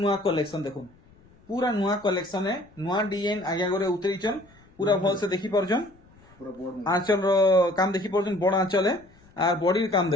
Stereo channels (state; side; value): noise; left; rumble, 28 dB below the sound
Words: कलेक्शन देखुन पूरा नुआ कलेक्शन है नुआ डिजाइन आगे आगे उतरीचन पूरा भल से देखि परछन आंचल रो काम देखि परछन बड़ आंचल है और बॉडी काम